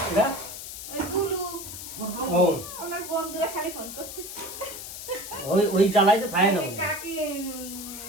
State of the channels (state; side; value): noise; left; hiss, 10 dB below the sound